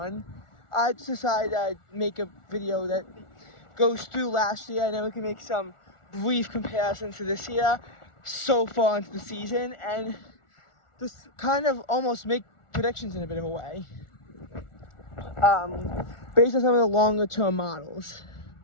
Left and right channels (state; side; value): late; right; 1.4 ms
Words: I just decided I'd make a video that goes through last year, and then we can make some brief comparisons to this year so far into the season, and just kind of almost make predictions in a bit of a way, based on some of the longer term models.